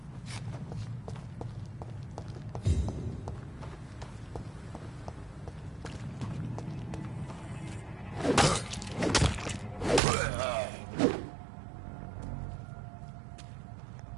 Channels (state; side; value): drops out; left; at 10.0 s